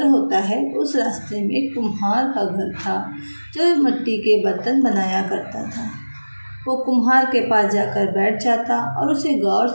होता है उस रास्ते में एक कुम्हार का घर था जो मिट्टी के बर्तन बनाया करता था। वो कुम्हार के पास जाकर बैठ जाता और उसे गौर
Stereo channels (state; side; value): inverted; both; correlation -1.00